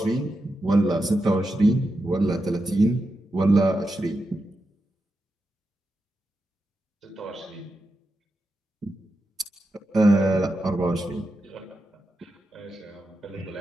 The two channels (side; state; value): both; normal; correlation 0.88